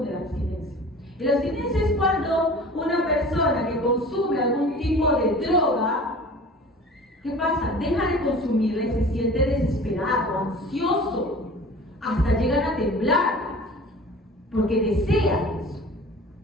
la abstinencia? La abstinencia es cuando una persona que consume algún tipo de droga, ¿qué pasa? Deja de consumirla y se siente desesperado, ansioso, hasta llegan a temblar, porque desean eso,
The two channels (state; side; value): normal; both; correlation 0.42